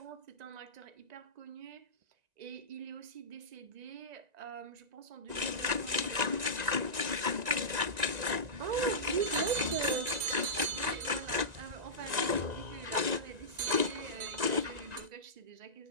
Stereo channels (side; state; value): left; late; 1.9 ms